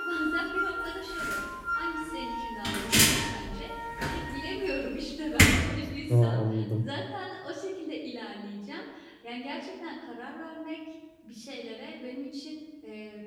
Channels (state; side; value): identical; both; correlation 1.00